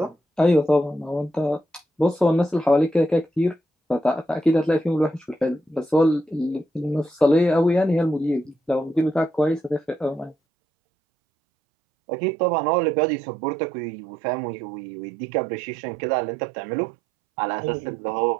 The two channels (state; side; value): drops out; left; at 10.4 s